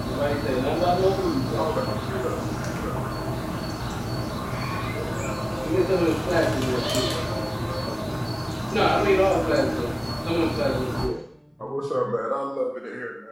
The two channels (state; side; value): identical; both; correlation 1.00